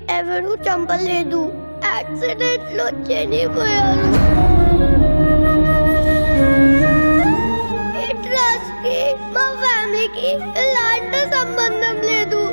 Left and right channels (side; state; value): both; inverted; correlation -1.00